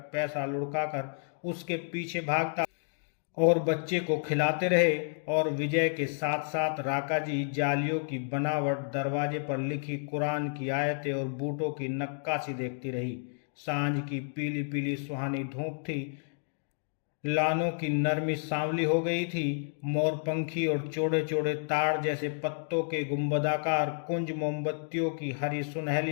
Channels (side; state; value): right; silent; digital silence